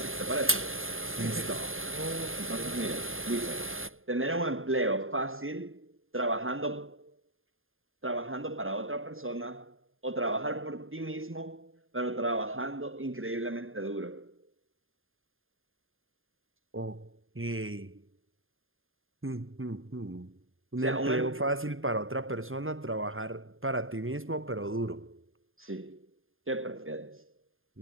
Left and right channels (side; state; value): left; late; 0.60 ms